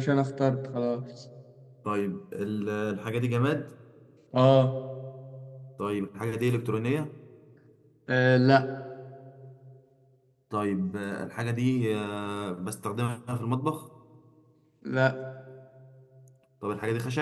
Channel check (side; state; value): both; identical; correlation 1.00